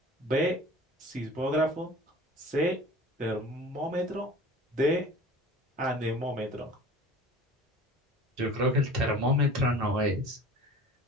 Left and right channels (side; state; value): both; normal; correlation 0.42